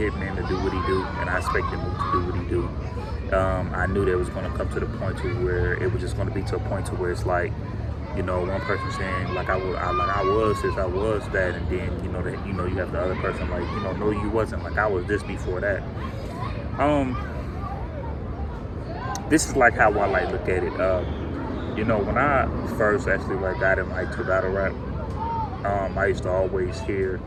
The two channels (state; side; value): identical; both; correlation 1.00